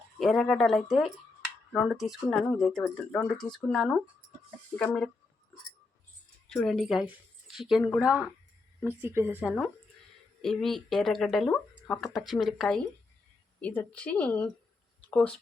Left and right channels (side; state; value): right; quieter; 3.7 dB